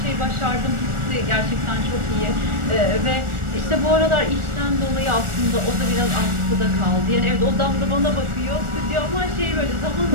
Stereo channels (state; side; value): late; left; 1.4 ms